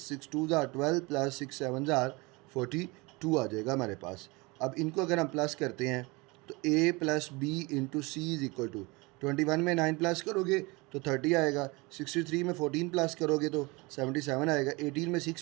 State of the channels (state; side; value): quieter; left; 25.3 dB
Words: 6 2s are 12 plus 6 7s are 42 आ जाएगा हमारे पास। अब इनको अगर हम प्लस करते हैं तो a plus B into C is equal to 21 में 9 प्लस करोगे तो 30 आएगा, 63 में 14 प्लस करोगे तो 77 आएगा, 18 में 6